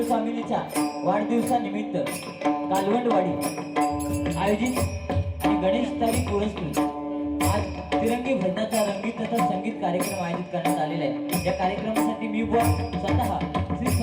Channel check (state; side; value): identical; both; correlation 1.00